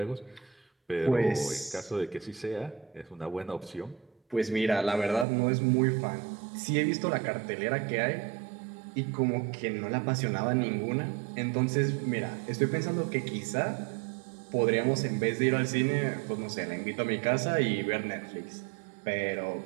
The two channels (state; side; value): drops out; left; at 5.2 s